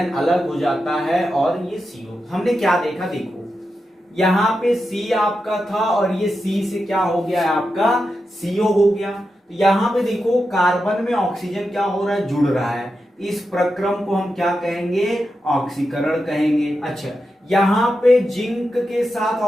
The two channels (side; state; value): both; normal; correlation 0.89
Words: अलग हो जाता है और ये CO। हमने क्या देखा, देखो यहां पे C आपका था और ये C से क्या हो गया है, आपका CO हो गया। तो यहां पे देखो कार्बन में ऑक्सीजन क्या हो रहा है, जुड़ रहा है, इस प्रक्रम को हम क्या कहेंगे, ऑक्सीकरण कहेंगे। अच्छा, यहां पे जिंक के साथ